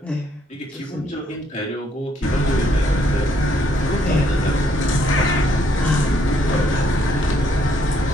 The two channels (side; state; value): both; normal; correlation 0.70